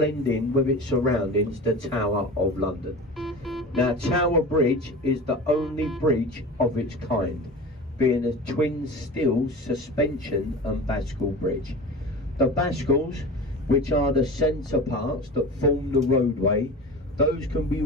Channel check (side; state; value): both; normal; correlation 0.33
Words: in with its surroundings, the Tower of London. Now Tower Bridge is the only bridge of its kind, being a twin steel suspension and bascule bridge. The bascules, which are the centre parts that form the roadway, those can be